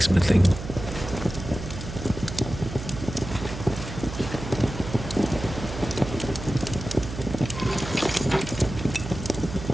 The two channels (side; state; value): right; noise; hum, 9 dB below the sound